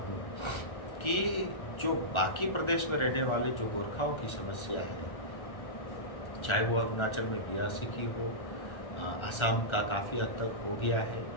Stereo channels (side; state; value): right; late; 1.4 ms